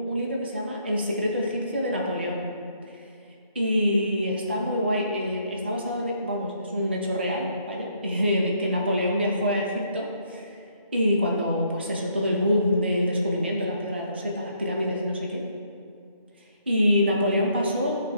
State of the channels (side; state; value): both; inverted; correlation -0.69